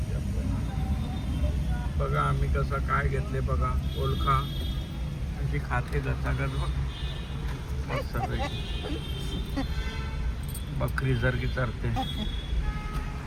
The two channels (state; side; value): identical; both; correlation 1.00